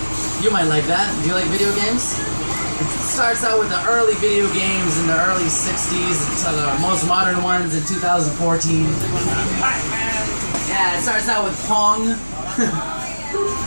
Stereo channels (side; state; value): both; inverted; correlation -1.00